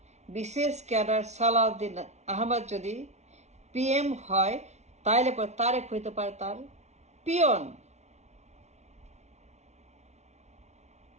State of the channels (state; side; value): late; left; 0.32 ms